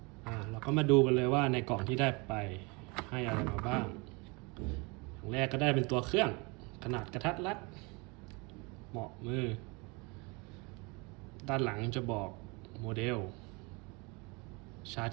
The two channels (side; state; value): left; quieter; 28.3 dB